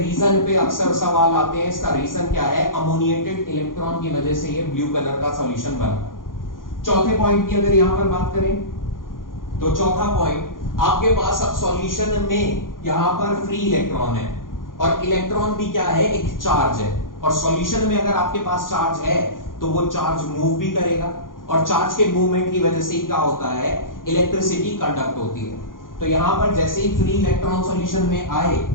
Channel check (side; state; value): right; late; 0.90 ms